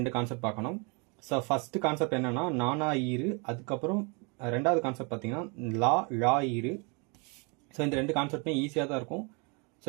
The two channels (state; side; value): quieter; left; 32.4 dB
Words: கான்செப்ட் பார்க்கணும். ஸோ ஃபர்ஸ்ட் கான்செப்ட் என்னன்னா நானா ஈரு, அதுக்கப்புறம் ரெண்டாவது கான்செப்ட் பார்த்தீங்கன்னா லா ஈரு. ஸோ இந்த 2 கான்செப்ட்மே ஈஸியாக தான் இருக்கும். ஸோ